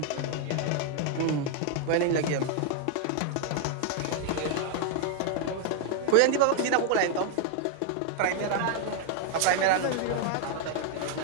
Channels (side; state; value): both; different; correlation 0.00